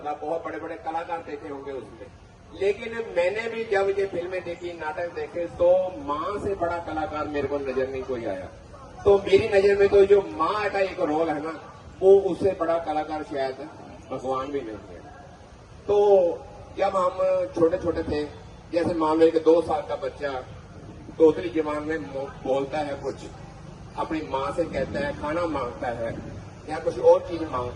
बहुत बड़े बड़े कलाकार देखे होंगे उसमें, लेकिन मैंने भी जब ये फिल्में देखी, नाटक देखे, तो माँ से बड़ा कलाकार मेरे को नजर नहीं कोई आया। तो मेरी नजर में तो जो माँ का एक रोल है ना, वो उससे बड़ा कलाकार शायद भगवान भी नहीं है। तो जब हम छोटे छोटे थे, जैसे मान लो कि 2 साल का बच्चा तोतली जबान में बोलता है, कुछ अपनी माँ से कहता है, खाना मांगता है या कुछ और चीज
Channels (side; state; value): both; identical; correlation 1.00